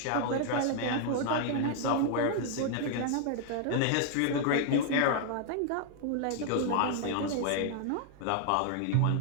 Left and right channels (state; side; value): different; both; correlation 0.00